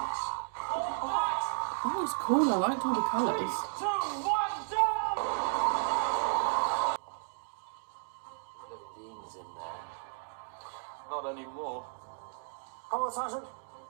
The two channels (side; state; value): left; silent; digital silence